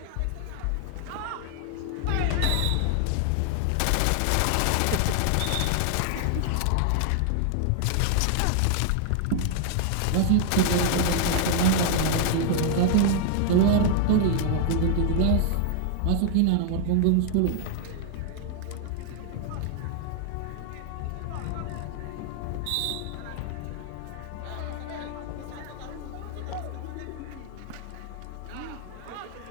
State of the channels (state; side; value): different; both; correlation 0.00